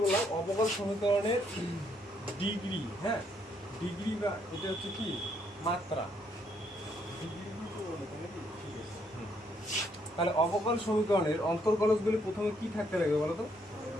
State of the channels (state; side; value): normal; both; correlation 0.71